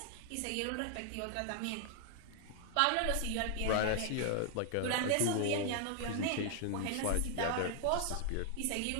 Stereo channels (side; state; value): both; different; correlation 0.00